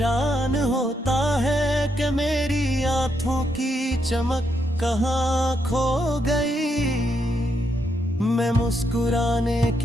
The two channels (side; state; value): both; normal; correlation 0.79